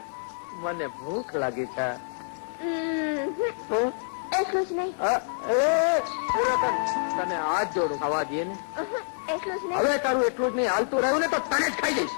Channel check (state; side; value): silent; right; 56 dB below the other